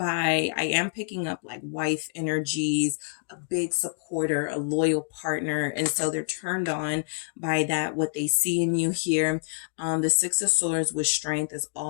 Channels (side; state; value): right; silent; digital silence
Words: I am picking up like wife energies, a big supporter, a loyal partner. And so they're turned on by that, what they see in you here. The Six of Swords with strength is